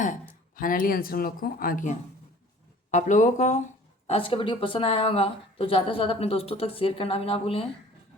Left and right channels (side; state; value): both; normal; correlation 0.49